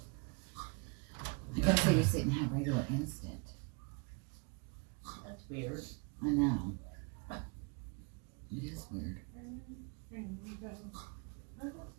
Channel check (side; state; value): left; quieter; 32.4 dB